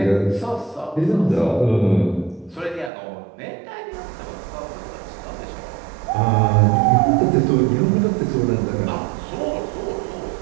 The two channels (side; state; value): left; drops out; at 2.9 s